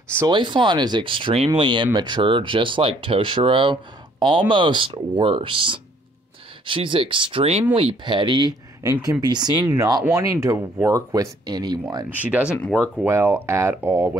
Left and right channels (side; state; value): both; normal; correlation 0.63